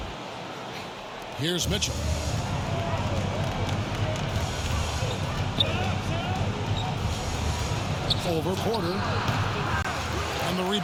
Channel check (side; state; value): both; identical; correlation 1.00